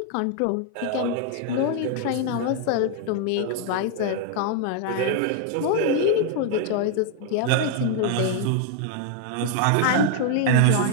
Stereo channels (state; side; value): different; both; correlation 0.00